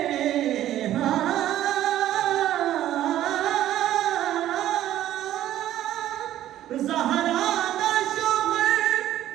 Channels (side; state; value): left; quieter; 12.7 dB